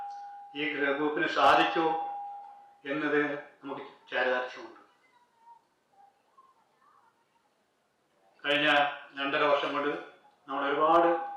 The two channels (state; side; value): identical; both; correlation 1.00